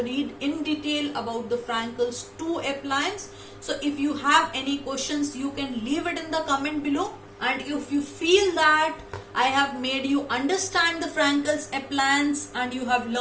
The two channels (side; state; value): both; identical; correlation 1.00